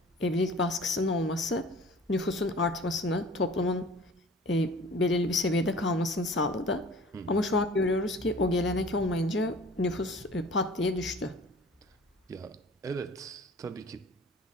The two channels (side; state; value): both; normal; correlation 0.45